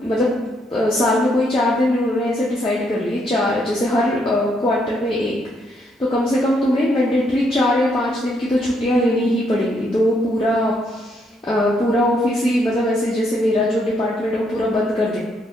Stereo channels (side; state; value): both; normal; correlation 0.73